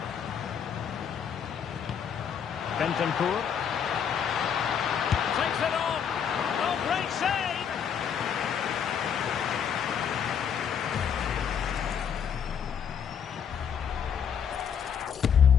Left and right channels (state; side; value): quieter; right; 7.7 dB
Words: Bentancur takes it on. Oh, great save!